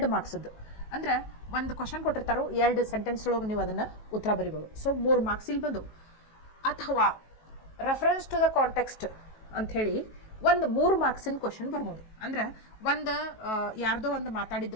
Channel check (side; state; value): right; late; 18 ms